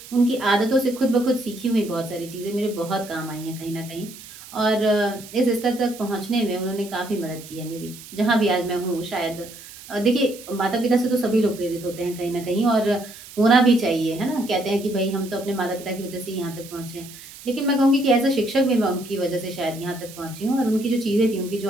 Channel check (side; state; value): right; noise; hiss, 17 dB below the sound